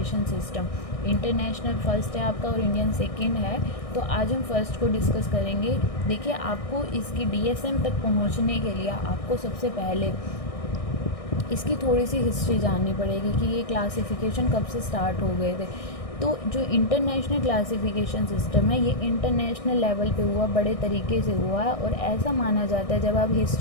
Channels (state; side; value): late; right; 1.6 ms